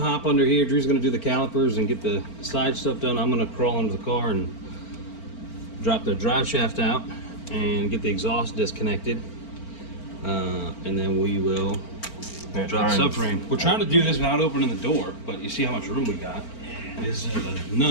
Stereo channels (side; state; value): right; late; 4.4 ms